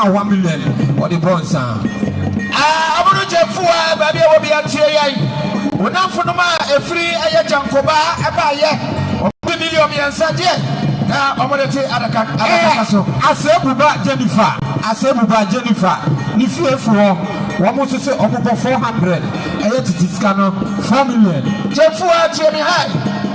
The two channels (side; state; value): both; identical; correlation 1.00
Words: 1 million or the bonds. I'm going to Jeffua, baby, will be at Tia. When I'm for a free Jankoba, a buyer, or 2 million and said, now I'm going to say Adakaso. I said, Jennifer, if you for. One must say over 400. I had to discount 4 million. Jeffua, Jimmy High.